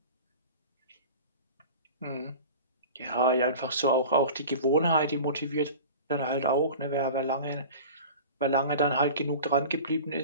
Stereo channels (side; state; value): both; inverted; correlation -0.36